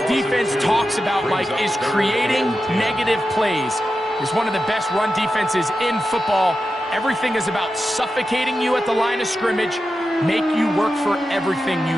defense talks about, Mike, is creating negative plays. It's one of the best run defenses in football. Everything is about suffocating you at the line of scrimmage, make you work for everything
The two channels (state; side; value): normal; both; correlation 0.91